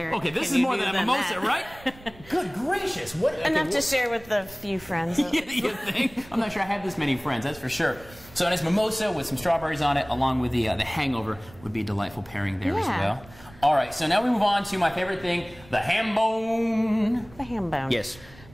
Okay, this can is you more do than a mimosa, that? right? Good gracious! What? Okay, Enough to share with a few friends. You think? I'm not sure I have this many friends, that's for sure. So a nice mimosa with some strawberries on it, along with the hangover, would be a delightful pairing there as well. All right, so now we move on to my favorite thing, the hambone. The hambone. Yes.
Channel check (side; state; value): right; noise; rumble, 22 dB below the sound